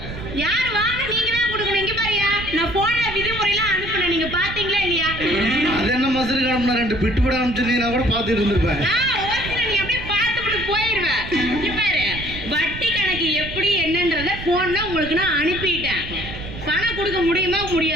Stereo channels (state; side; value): noise; right; rumble, 10 dB below the sound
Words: யார் வாங்க நீங்க தான் கொடுக்கணும். இங்க பாருயா, நான் போன்ல விதிமுறைலாம் அனுப்புனேன், நீங்க பாத்தீங்களா இல்லையா? அது என்ன மசரு காணும்னா 2 பிட்டு பட அனுப்பிச்சிருந்தீங்கன்னா கூட பார்த்துட்டு இருந்திருப்பேன். நீ அப்படியே பார்த்துட்டு போயிருவேன். இங்க பாரு, வட்டி கணக்கு எப்படி என்னன்றத போன்ல உங்களுக்கு நான் அனுப்பிட்டேன். பணம் கொடுக்க முடியுமா